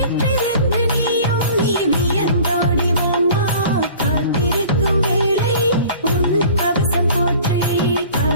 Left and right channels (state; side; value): inverted; both; correlation -0.45